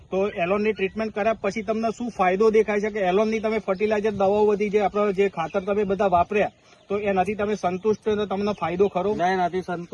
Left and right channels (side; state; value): both; identical; correlation 1.00